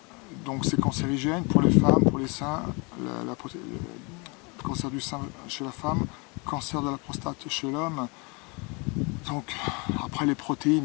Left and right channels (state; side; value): quieter; right; 30.4 dB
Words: Donc c'est cancérigène pour les femmes, pour les seins, le cancer du sein chez la femme, cancer de la prostate chez l'homme. Donc après les protéines,